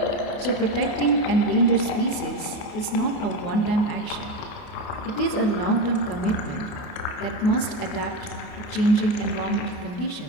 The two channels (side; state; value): right; late; 29 ms